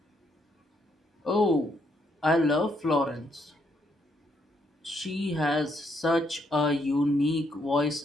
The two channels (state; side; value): normal; both; correlation 0.74